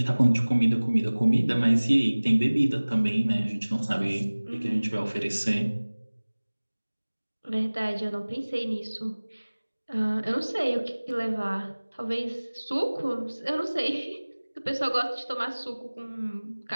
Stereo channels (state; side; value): inverted; both; correlation -1.00